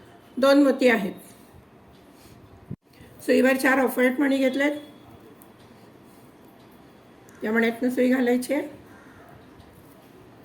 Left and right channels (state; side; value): identical; both; correlation 1.00